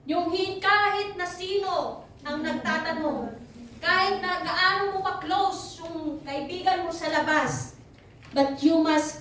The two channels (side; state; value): both; identical; correlation 1.00